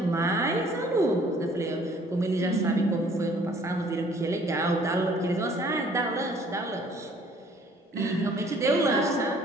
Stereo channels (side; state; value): both; normal; correlation 0.57